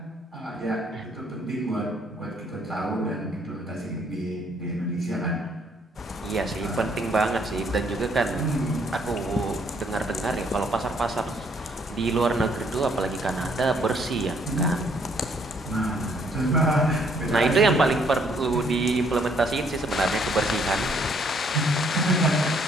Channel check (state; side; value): normal; both; correlation 0.67